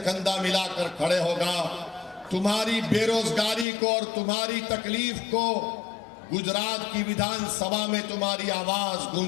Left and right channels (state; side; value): drops out; right; at 3.7 s